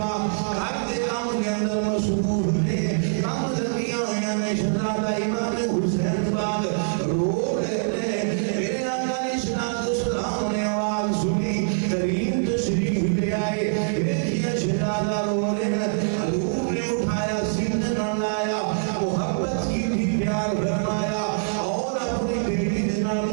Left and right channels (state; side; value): silent; left; 61 dB below the other